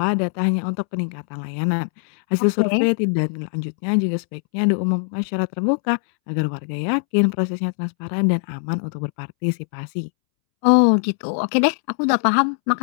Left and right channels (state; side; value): silent; right; 65 dB below the other